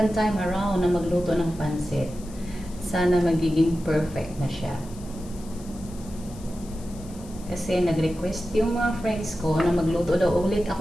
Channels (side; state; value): left; noise; hiss, 21 dB below the sound